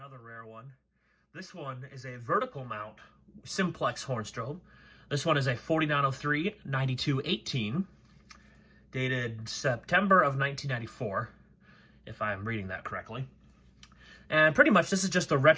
rare one. This one is a vertical mount Simplex horn strobe. This one is a 4903-9218, dated September of 1994, if I'm reading that correctly. And pretty much this is just a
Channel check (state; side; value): identical; both; correlation 1.00